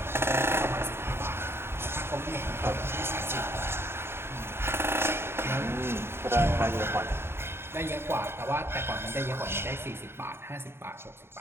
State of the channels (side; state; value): left; late; 0.12 ms